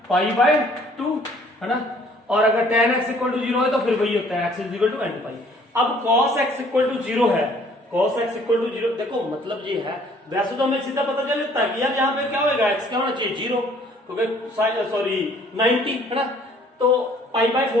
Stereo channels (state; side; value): normal; both; correlation 0.58